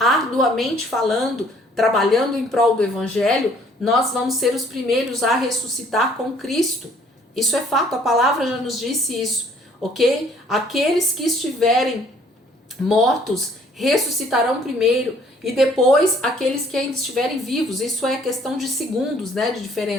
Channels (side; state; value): both; normal; correlation 0.60